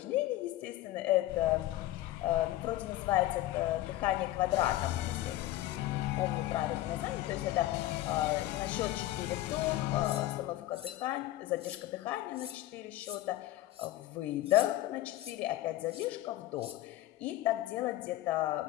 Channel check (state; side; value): quieter; right; 15.3 dB